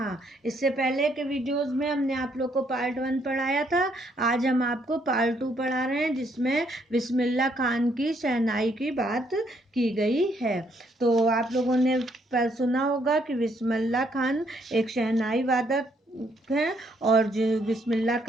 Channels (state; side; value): normal; both; correlation 0.71